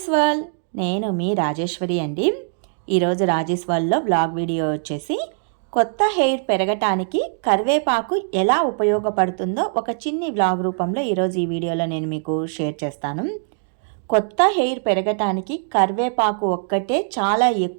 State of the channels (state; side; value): silent; left; digital silence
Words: world. నేను మీ రాజేశ్వరి అండి. ఈరోజు రాజేష్ వరల్డ్లో బ్లాగ్ వీడియో వచ్చేసి కొత్త హెయిర్ పెరగటానికి కరివేపాకు ఎలా ఉపయోగపడుతుందో ఒక చిన్ని బ్లాగ్ రూపంలో ఈరోజు ఈ వీడియోలో నేను మీకు షేర్ చేస్తాను. కొత్త హెయిర్ పెరగటానికి కరివేపాకు ఒక్కటే చాలా